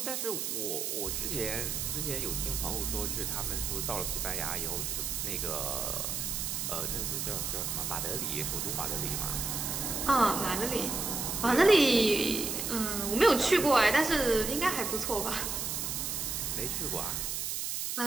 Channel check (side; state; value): right; noise; hiss, 2 dB below the sound